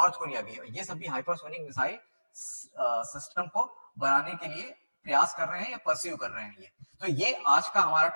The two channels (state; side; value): inverted; both; correlation -1.00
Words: कोरिया भी है, ये सब भी हाइपरसोनिक मिसाइल सिस्टम को बनाने के लिए प्रयास कर रहे हैं या परस्यू कर रहे हैं। ये तो ये आज का हमारा